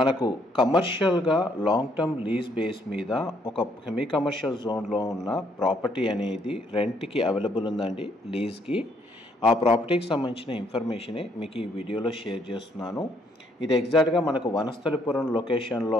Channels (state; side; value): normal; both; correlation 0.69